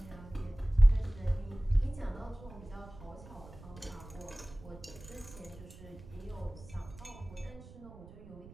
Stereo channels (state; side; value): noise; right; rumble, 18 dB below the sound